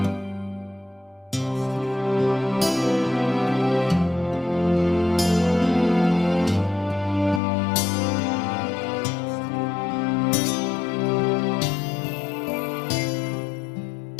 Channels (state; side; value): drops out; right; at 7.4 s